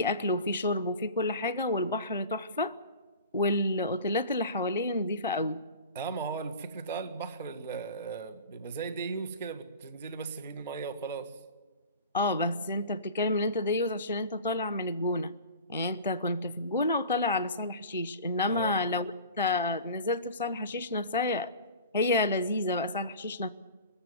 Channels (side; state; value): both; inverted; correlation -0.37